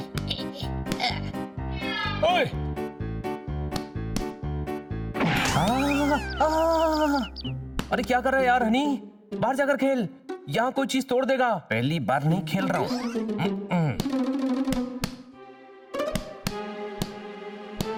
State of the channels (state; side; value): identical; both; correlation 1.00